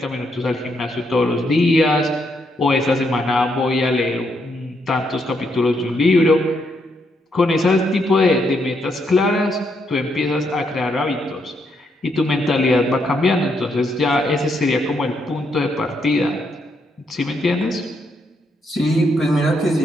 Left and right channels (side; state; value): both; normal; correlation 0.77